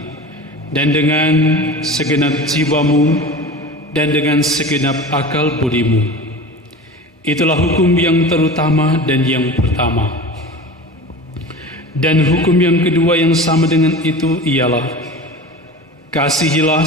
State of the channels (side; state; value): both; normal; correlation 0.33